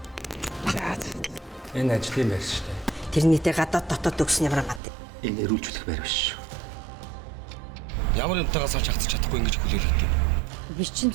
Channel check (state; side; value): drops out; left; at 4.8 s